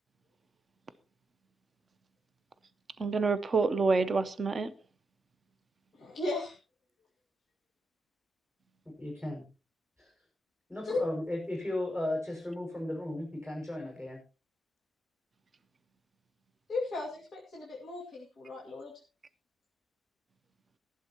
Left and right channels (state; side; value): normal; both; correlation 0.85